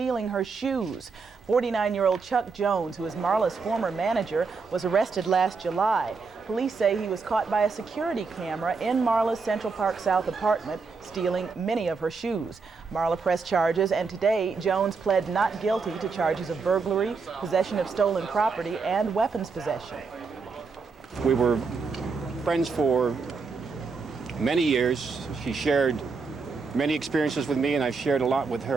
her shoes. 49-year-old Chuck Jones, who is Marla's former manager, was arrested last July. Police say he was caught by a security camera in Marla's Central Park South apartment, stealing many of her shoes. Marla pressed charges, and today Jones pled not guilty to charges of burglary, possession of stolen property, and weapons possession. We were friends for many years. She shared many experiences with me, and I've shared a lot with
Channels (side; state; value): left; quieter; 4.7 dB